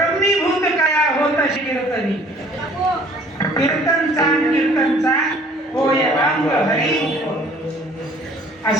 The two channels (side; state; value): both; normal; correlation 0.54